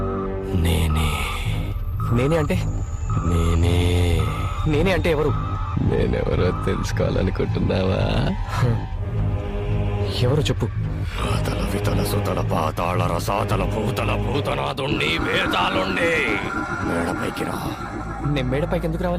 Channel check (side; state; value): both; identical; correlation 1.00